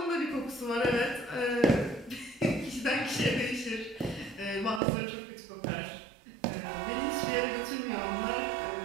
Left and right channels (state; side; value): drops out; left; at 4.8 s